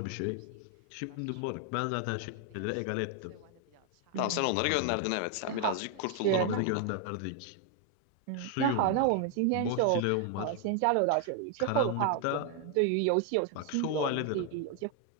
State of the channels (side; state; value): both; different; correlation 0.01